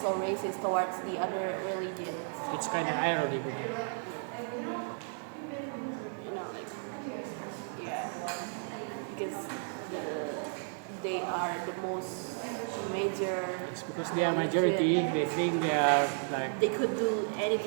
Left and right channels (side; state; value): left; silent; 55 dB below the other